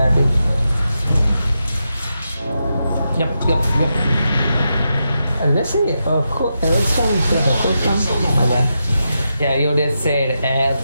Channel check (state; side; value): inverted; both; correlation -0.86